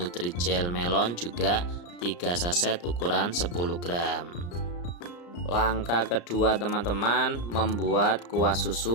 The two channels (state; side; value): late; right; 34 ms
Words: melon juga 3 saset ukuran 10 gram. Langkah kedua teman-teman, membuat kuah